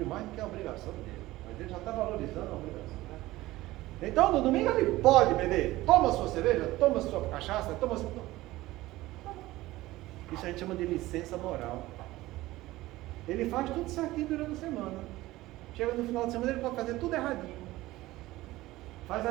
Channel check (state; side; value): quieter; left; 17.6 dB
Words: mais do que a obrigação dele, mas ele já está valorizando a obrigação, né? Então no domingo ele pode beber, toma sua cerveja, toma sua cachaça, toma sua... Isso a gente chama de licença moral. Ele faz tudo certinho durante a semana. Chega no final de semana, ele pode fazer tudo erradinho. Faz a